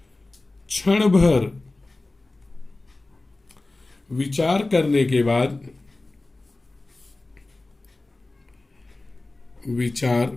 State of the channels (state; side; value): quieter; right; 3.1 dB